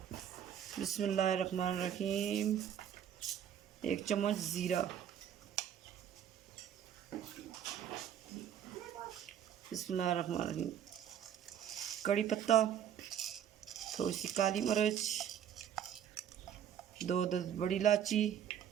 बिस्मिल्लाहिर्रहमानिर्रहीम। 1 चम्मच ज़ीरा, बिस्मिल्लाहिर्रहमानिर्रहीम। कड़ी पत्ता, थोड़ी सी काली मिर्च, 2 बड़ी इलायची,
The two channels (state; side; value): quieter; left; 9.5 dB